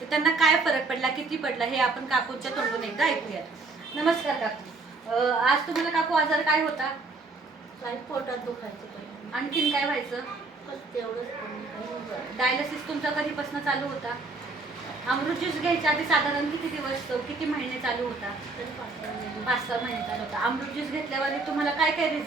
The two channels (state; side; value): quieter; left; 3.6 dB